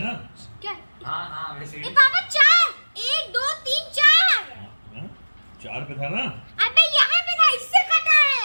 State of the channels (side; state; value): both; inverted; correlation -1.00